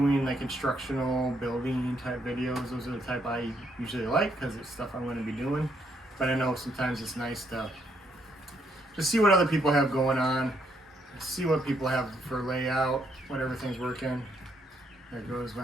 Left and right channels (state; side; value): normal; both; correlation 0.73